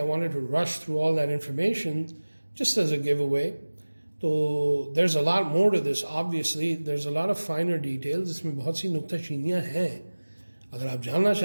wanted to rush through all that information just as a giveaway. तो there's a lot more to this. Obviously there's a lot of finer details. इसमें बहुत सी नुक्ताचीनियाँ हैं. अगर आप जानना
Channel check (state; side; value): inverted; both; correlation -1.00